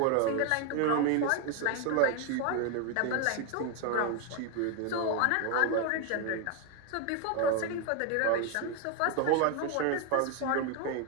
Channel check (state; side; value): different; both; correlation 0.01